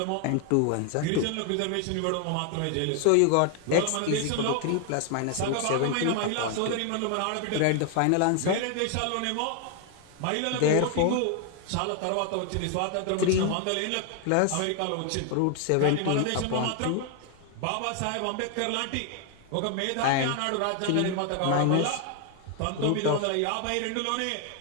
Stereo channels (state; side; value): different; both; correlation 0.00